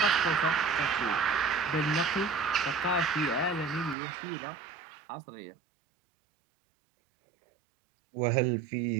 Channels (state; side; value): drops out; left; at 4.0 s